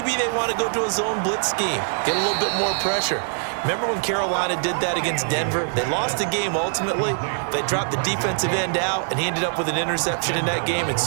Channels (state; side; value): silent; left; digital silence